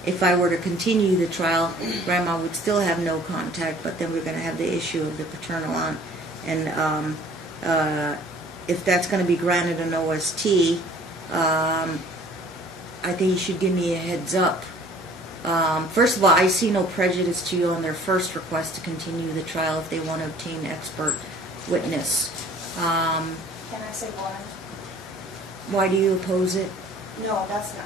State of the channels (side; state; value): both; normal; correlation 0.52